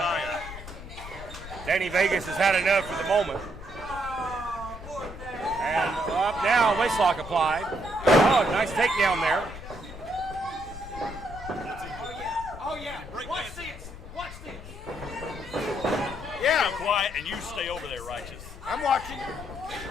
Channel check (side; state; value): left; noise; rumble, 13 dB below the sound